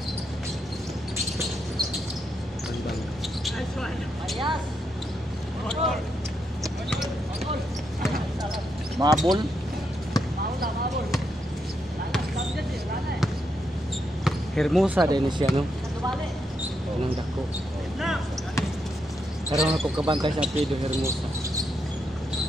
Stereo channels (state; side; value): normal; both; correlation 0.81